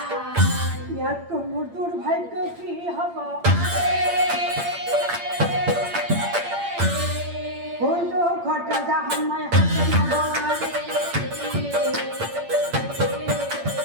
ইয়াতকৈ মোৰ দুৰ্ভাগ্য কি হ'ব কোনটো ঘট যা সময় হাতে নগৰে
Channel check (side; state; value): left; late; 8.7 ms